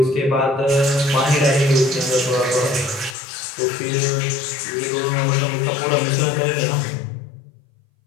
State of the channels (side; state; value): right; drops out; at 3.2 s